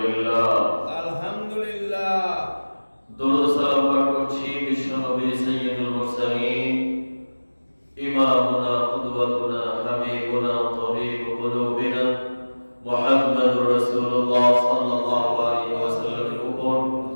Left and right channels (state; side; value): inverted; both; correlation -1.00